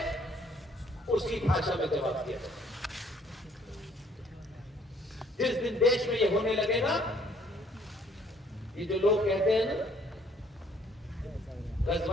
उसी भाषा में जवाब दिया जाए। जिस दिन देश में यह होने लगेगा, ये जो लोग कहते हैं ना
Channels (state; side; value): normal; both; correlation 0.62